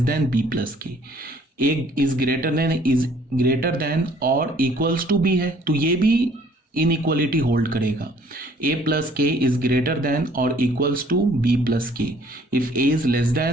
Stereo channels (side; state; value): both; normal; correlation 0.58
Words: than B plus K. A is greater than और equals to B है तो ये भी इनइक्वालिटी होल्ड करेगा। A plus K is greater than और equals to B plus के। If A is less